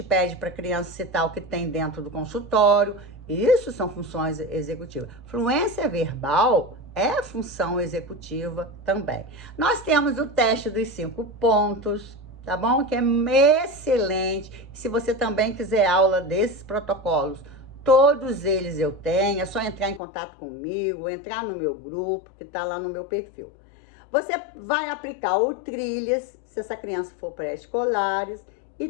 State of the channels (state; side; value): drops out; right; at 20.0 s